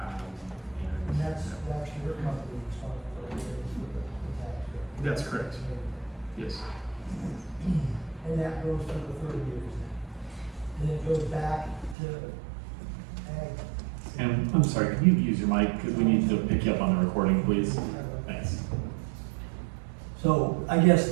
that's your company responsibility for the tax rate? That's correct. Yes. And that goes for the 30 years. And it goes back to ag. And I'm sorry, can you use your mic, because we need to pick you up on the recording, please? Thanks. So I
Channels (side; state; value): left; drops out; at 12.0 s